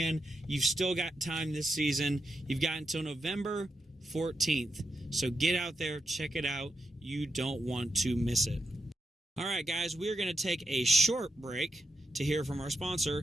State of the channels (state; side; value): normal; both; correlation 0.85